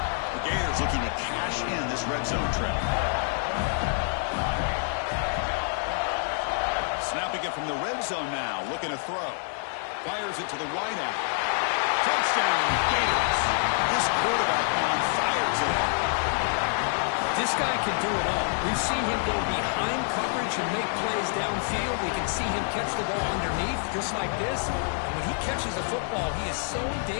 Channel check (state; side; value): silent; right; 60 dB below the other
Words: The Gators looking to cash in this red zone trail. Snapping it from the red zone now, looking to throw. Fires it to the wide out. Touchdown, Gators. This quarterback on fire today. This guy can do it all. We've seen him go behind coverage and make plays downfield. We can see him catch the ball underneath, just like this. And when he catches a football, he is so